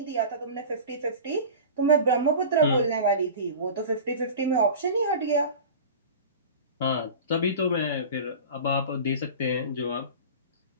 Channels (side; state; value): both; inverted; correlation -0.34